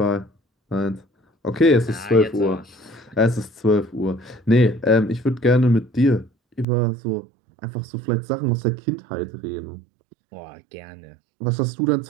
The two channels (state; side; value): drops out; left; at 6.7 s